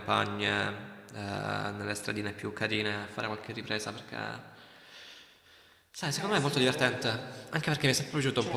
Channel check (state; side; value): identical; both; correlation 1.00